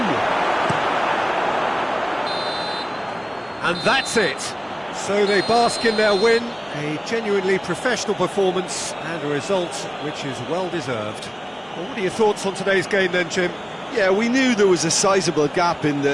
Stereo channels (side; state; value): both; identical; correlation 1.00